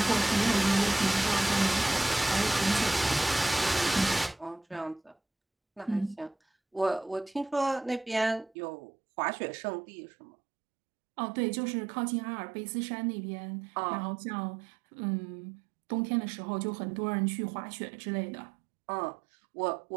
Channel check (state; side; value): drops out; left; at 8.6 s